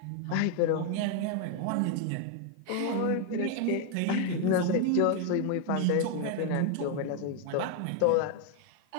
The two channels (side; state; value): both; different; correlation 0.01